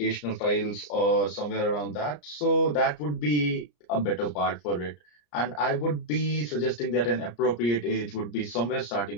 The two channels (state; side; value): late; right; 34 ms